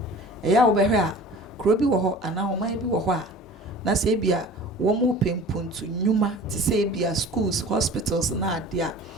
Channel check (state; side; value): normal; both; correlation 0.42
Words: eya wo behwe a kro bi wo ho ana oman bi wo ho a na se bia womu pempuntu nyuma ti say bia schools hospitals na adia